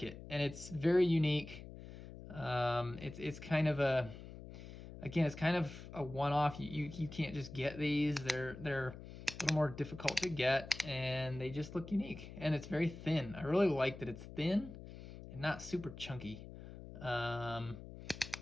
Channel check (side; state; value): left; noise; hum, 13 dB below the sound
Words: it. And it's very unique. It's kind of a... Again, it's kind of a one-off. You can't just get these. They're a little more difficult to get, and they just look unique. And it's very thin. I really like that it's thin and not super chunky. And